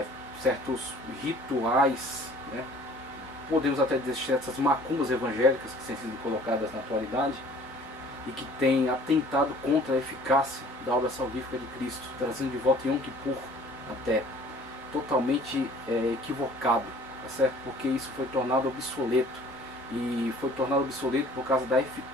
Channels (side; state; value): both; normal; correlation 0.52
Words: certos rituais, né, podemos até dizer essas macumbas evangélicas que têm sido colocadas na atualidade e que têm atentado contra a eficácia da obra salvífica de Cristo, trazendo de volta Yom Kippur até totalmente equivocado, tá certo? Porque isso foi tornado obsoleto, e foi tornado obsoleto por causa da